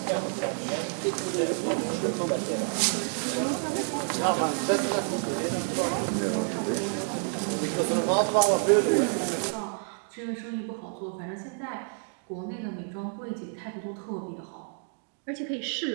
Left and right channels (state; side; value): silent; left; 56 dB below the other